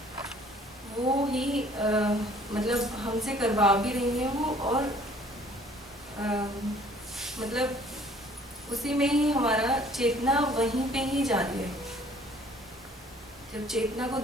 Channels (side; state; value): both; normal; correlation 0.56